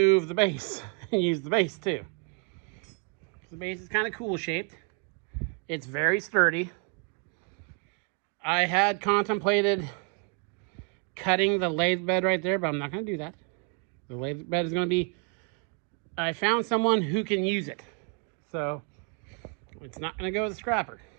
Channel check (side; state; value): left; quieter; 37.9 dB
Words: the base and use the base too. The base is kind of cool shaped. It's very sturdy. I had contemplated cutting the lathe bed right there, but I'm not going to do that. The lathe bed is going to be, I found someone who can use it. So it's not going to go to the scrapper.